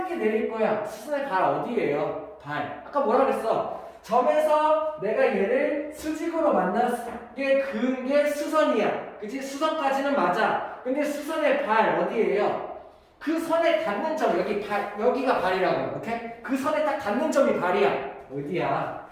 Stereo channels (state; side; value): identical; both; correlation 1.00